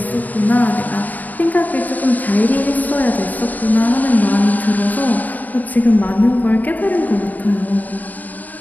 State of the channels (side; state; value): right; late; 0.081 ms